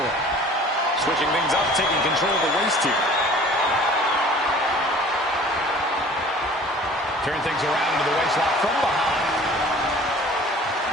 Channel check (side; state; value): both; normal; correlation 0.48